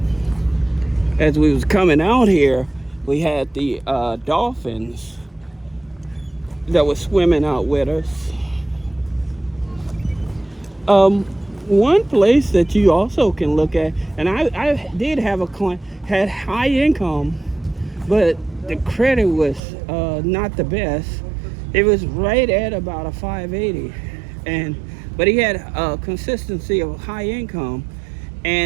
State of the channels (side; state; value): left; drops out; at 19.6 s